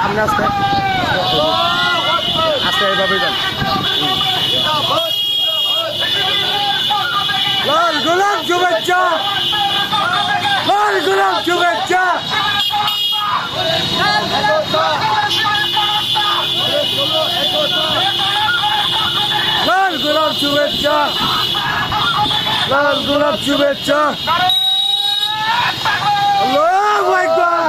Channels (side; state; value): both; identical; correlation 1.00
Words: আস্তে এইভাবে যান লাল গোলাপ শুভেচ্ছা লাল গোলাপ শুভেচ্ছা লাল গোলাপ শুভেচ্ছা লাল গোলাপ শুভেচ্ছা আল্লাহু